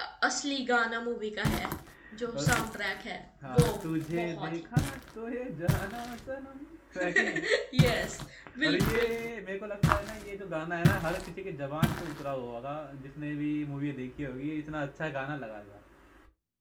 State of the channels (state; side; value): identical; both; correlation 1.00